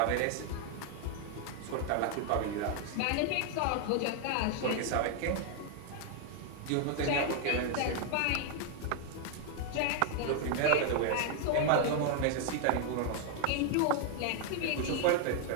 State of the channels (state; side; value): different; both; correlation 0.00